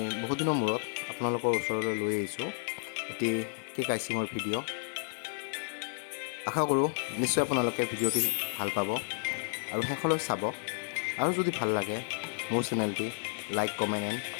বহুত দিনৰ মূৰত আপোনালোকৰ ওচৰলৈ লৈ আহিছোঁ এটি কেক আইচিঙৰ ভিডিঅ'। আশা কৰোঁ নিশ্চয় আপোনালোকে ভিডিঅ'টি ভাল পাব আৰু শেষলৈ চাব। আৰু যদি ভাল লাগে মোৰ চেনেলটি লাইক, কমেণ্ট এণ্ড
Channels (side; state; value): right; silent; digital silence